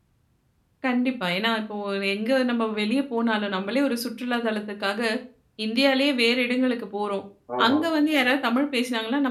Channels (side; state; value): both; identical; correlation 1.00